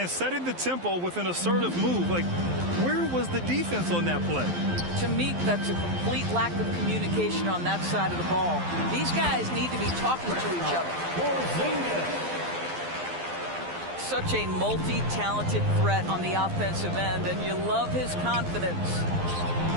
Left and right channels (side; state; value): left; late; 12 ms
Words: setting the tempo with an assertive move. Like, where was the defense on that play? To me, that's a complete lack of communication on that side of the ball. These guys need to be talking to each other. Such a multi-talented threat on the offensive end, and you love his confidence.